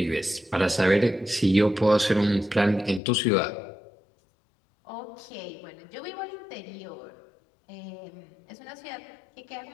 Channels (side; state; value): right; drops out; at 3.0 s